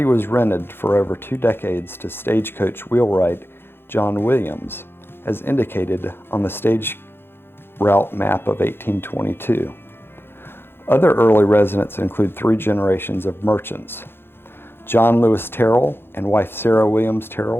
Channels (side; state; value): right; late; 0.11 ms